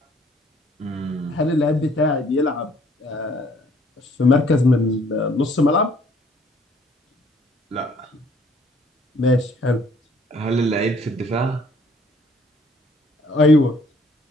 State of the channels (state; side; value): normal; both; correlation 0.61